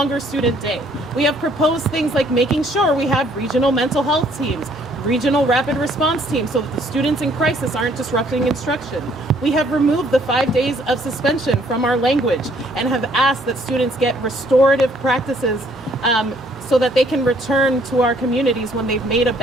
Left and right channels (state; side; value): normal; both; correlation 0.63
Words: student day. We have proposed things like making sure we have regional mental health teams, regional rapid response teams, so that the students in crisis aren't disrupting instruction. We have removed the 5 days of suspension from our language and have asked that students get restorative practices so that they can return to our communities when they've made a